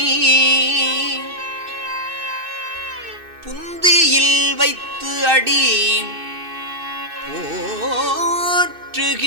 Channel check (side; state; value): left; late; 2.6 ms